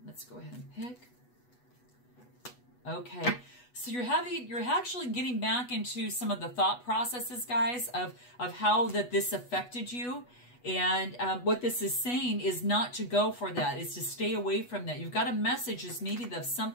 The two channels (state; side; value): late; right; 8.2 ms